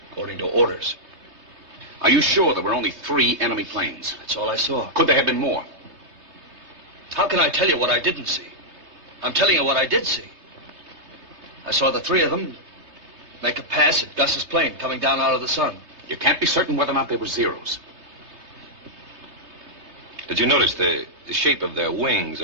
according to orders. Are you sure there were only 3 enemy planes? That's all I saw. Could there have been more? How can I tell you what I didn't see? I'm telling you what I did see. I saw the 3 of them make a pass at Gus's plane coming down out of the sun. You can't be certain whether or not they were Zeros. Did you notice the shape of their wings,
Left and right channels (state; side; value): late; left; 3.2 ms